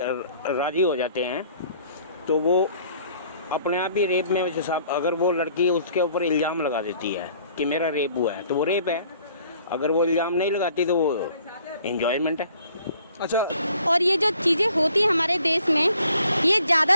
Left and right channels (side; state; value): both; inverted; correlation -0.58